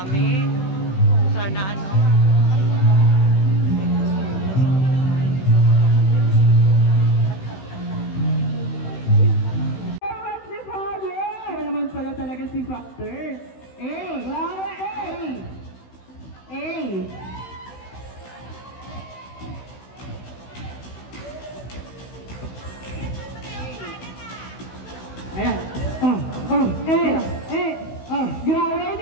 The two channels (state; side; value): late; right; 16 ms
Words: dami. Sana ano. Si Father! Naman pala talaga si Factor. Wow! Ayan. Grabe,